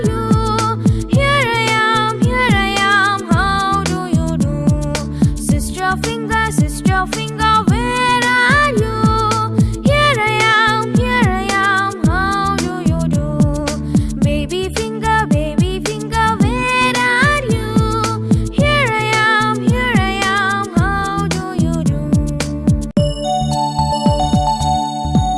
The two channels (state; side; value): identical; both; correlation 1.00